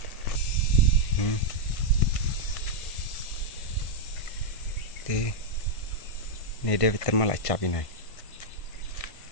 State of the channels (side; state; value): right; late; 1.5 ms